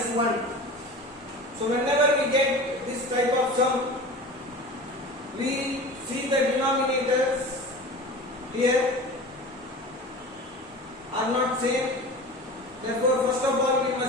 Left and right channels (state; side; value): normal; both; correlation 0.35